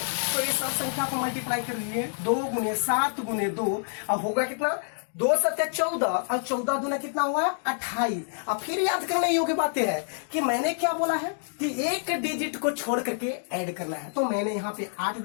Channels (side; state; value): right; silent; digital silence